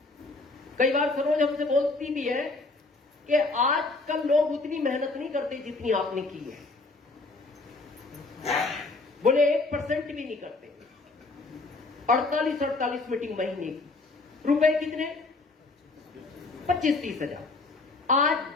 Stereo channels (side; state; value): right; quieter; 3.4 dB